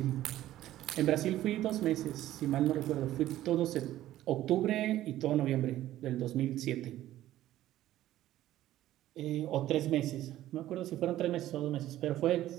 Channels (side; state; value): left; quieter; 13.9 dB